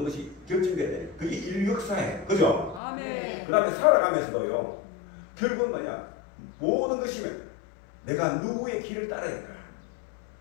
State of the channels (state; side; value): drops out; right; at 2.8 s